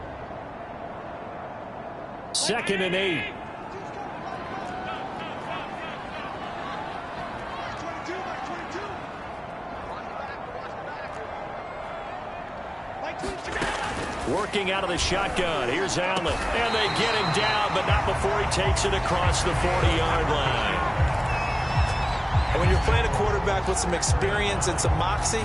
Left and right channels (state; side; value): identical; both; correlation 1.00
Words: Second and 8. Working out of the shotgun. Here's Allen. And they get him down, but not before he takes it across the 40-yard line. And when you're playing a quarterback with some experience and some moxie,